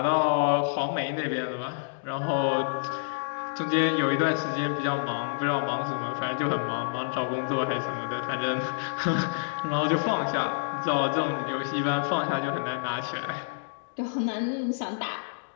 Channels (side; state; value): right; silent; digital silence